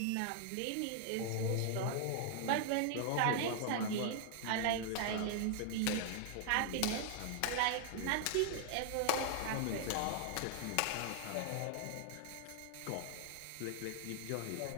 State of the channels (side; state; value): both; different; correlation -0.01